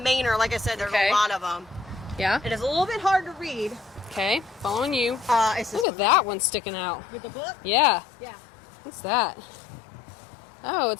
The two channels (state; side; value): drops out; right; at 5.9 s